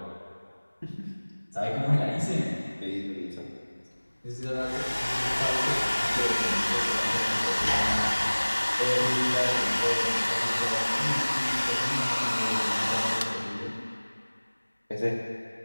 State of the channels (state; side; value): inverted; both; correlation -1.00